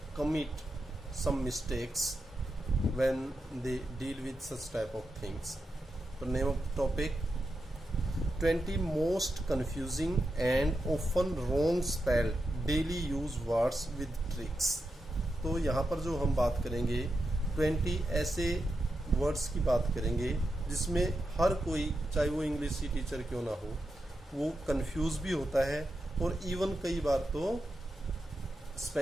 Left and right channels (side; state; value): both; normal; correlation 0.87